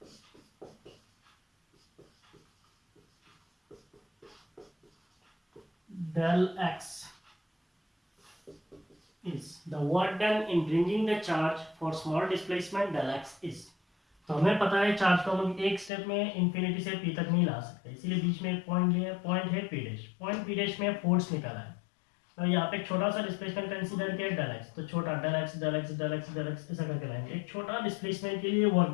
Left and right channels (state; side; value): drops out; right; at 15.9 s